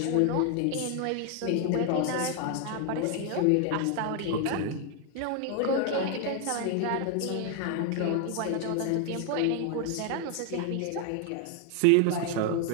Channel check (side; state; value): both; different; correlation 0.00